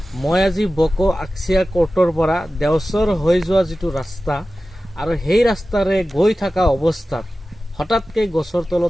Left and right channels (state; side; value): normal; both; correlation 0.95